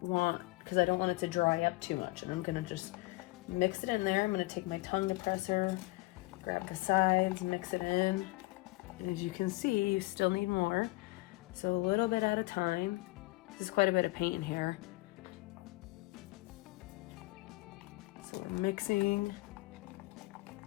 it to dry up too much. And I'm gonna just mix it in there. I'm gonna take my tongue depressor, grab the sides, mix it in. And as you can see, you still need more. So a little bit at a time. This is quite a bit of paint in here. So we're mixing.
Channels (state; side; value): quieter; right; 22.3 dB